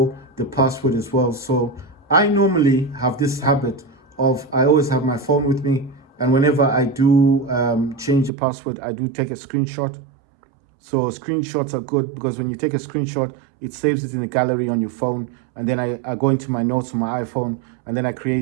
the password as well. So I normally have this habit of, I always have my phone with me, and whenever I do change the password, I do take a screenshot. So screenshots are good because when you take a screenshot, it saves it in the gallery on your phone, and then I go into my notes on my iPhone, and then I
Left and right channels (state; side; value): drops out; left; at 8.3 s